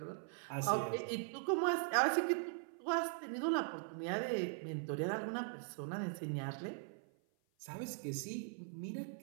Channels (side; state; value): left; silent; 51 dB below the other